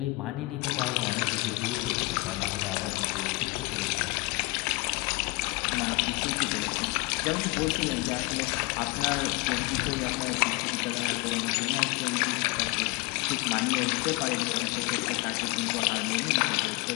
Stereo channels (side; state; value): right; quieter; 24.7 dB